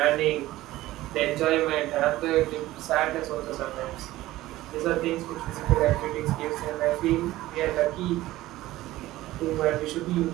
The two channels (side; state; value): left; quieter; 16.5 dB